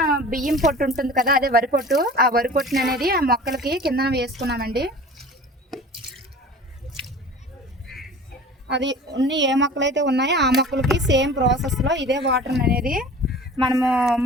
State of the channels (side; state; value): both; normal; correlation 0.41